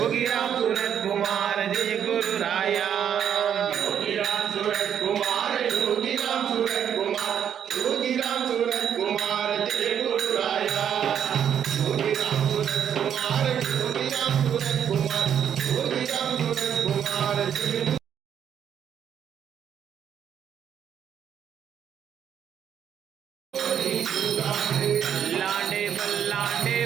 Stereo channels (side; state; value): left; quieter; 8.8 dB